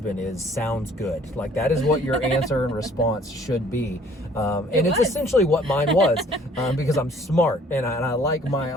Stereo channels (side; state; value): both; normal; correlation 0.56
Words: is sounds good. Like that is what your answer and response should be. And it's essentially what mine was, because I'm smart and I like my